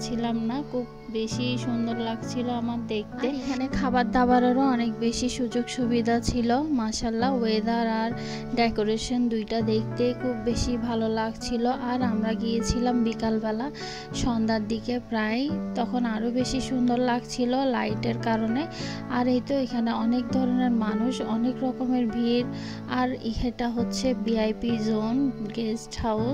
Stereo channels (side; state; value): both; identical; correlation 1.00